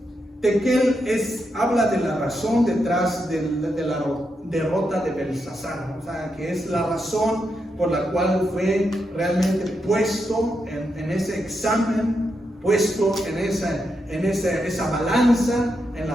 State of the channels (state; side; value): normal; both; correlation 0.84